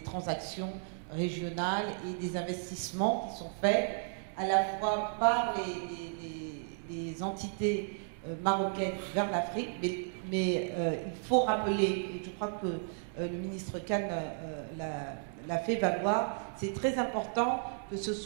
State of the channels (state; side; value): silent; left; 55 dB below the other